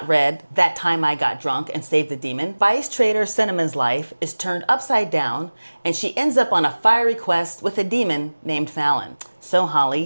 read That Time I Got Drunk and Saved a Demon, Vice Trader Cinnamon's life is turned upside down and she ends up on a fiery quest with a demon named Fallon. So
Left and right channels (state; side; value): inverted; both; correlation -1.00